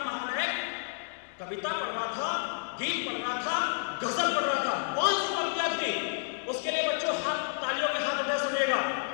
महानायक कविता पढ़ रहा था, गीत पढ़ रहा था, गजल पढ़ रहा था। कौन सी पंक्तियां थी, उसके लिए बच्चों हाथ तालियों के हाथ उठा। सुनिएगा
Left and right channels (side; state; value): right; silent; digital silence